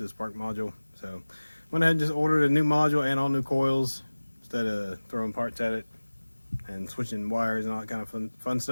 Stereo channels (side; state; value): both; inverted; correlation -1.00